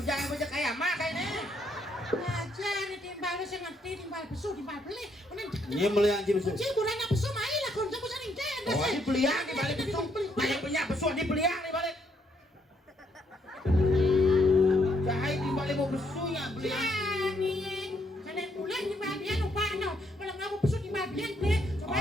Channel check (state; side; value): normal; both; correlation 0.73